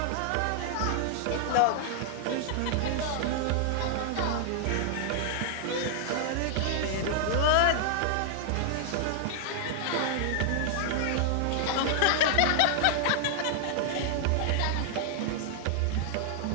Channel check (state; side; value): different; both; correlation -0.01